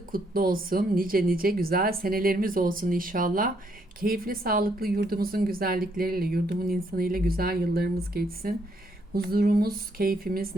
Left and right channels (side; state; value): both; normal; correlation 0.72